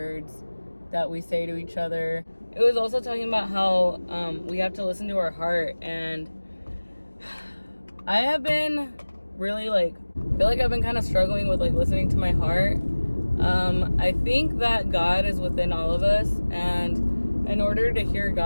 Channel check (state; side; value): inverted; both; correlation -1.00